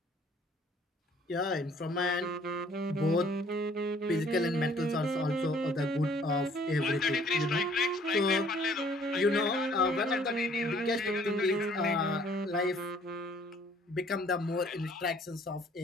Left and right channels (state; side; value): normal; both; correlation 0.58